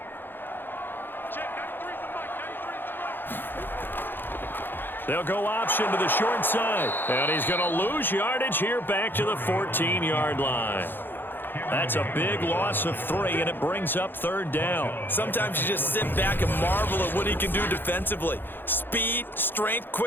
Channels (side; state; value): right; late; 0.098 ms